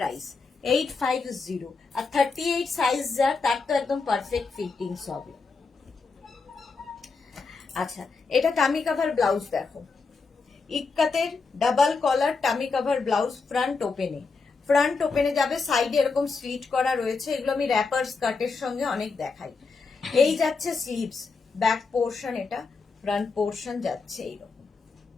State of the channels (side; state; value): right; quieter; 4.4 dB